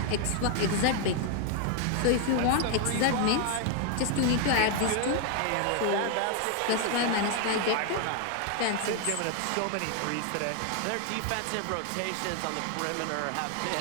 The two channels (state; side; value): different; both; correlation 0.00